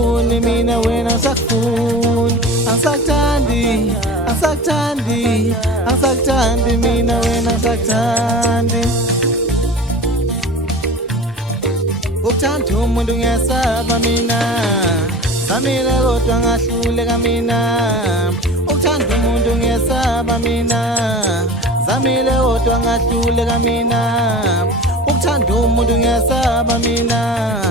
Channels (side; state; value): both; normal; correlation 0.36